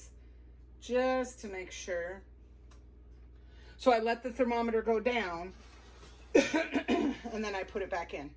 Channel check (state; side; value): identical; both; correlation 1.00